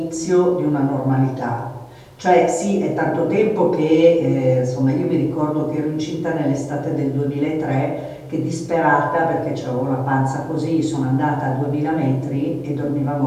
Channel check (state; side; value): identical; both; correlation 1.00